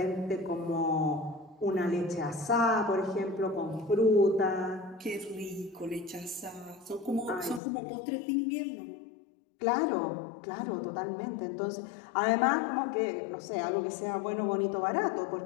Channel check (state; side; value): drops out; right; at 7.6 s